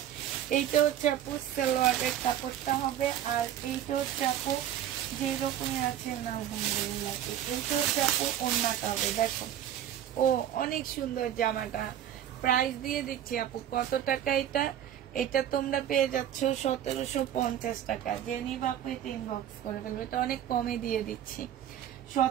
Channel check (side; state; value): left; quieter; 10.8 dB